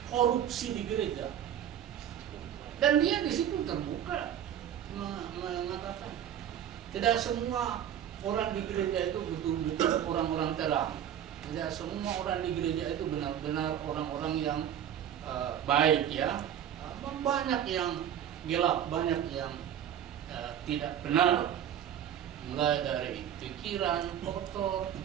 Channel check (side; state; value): left; quieter; 10.0 dB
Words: korupsi di gereja, dan dia di situ terbuka mengatakan tidak semua orang di gereja itu betul-betul orang-orang terang, tidak semua orang di gereja itu benar-benar orang-orang yang baik ya, banyak yang gelap, banyak yang tidak benar. Mulai dari pikiran kotor,